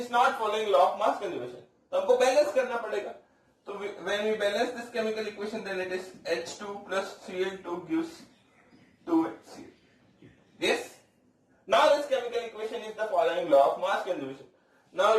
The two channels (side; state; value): both; identical; correlation 1.00